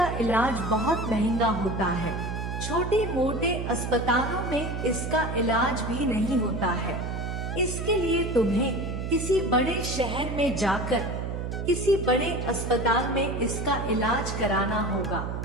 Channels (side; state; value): right; noise; hum, 4 dB below the sound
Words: इलाज बहुत महंगा होता है। छोटे मोटे अस्पतालों में इसका इलाज भी नहीं होता है। इसके लिए तुम्हें किसी बड़े शहर में जाकर किसी बड़े अस्पताल में इसका इलाज कराना होगा।